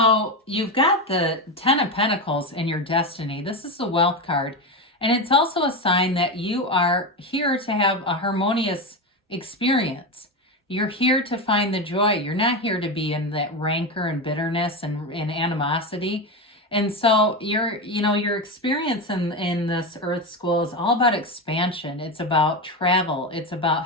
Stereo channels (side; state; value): both; normal; correlation 0.16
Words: you've got the Ten of Pentacles in your destiny. This is the Wealth card. And it's also a sign that you are here to have a harmonious experience. You're here to find the joy. You're not here to be in that rancor and bitterness and animosity. And so your experience in this Earth School is all about expansion. It's about travel. It's